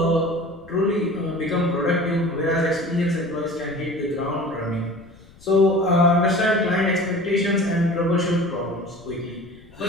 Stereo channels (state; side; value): noise; left; rumble, 25 dB below the sound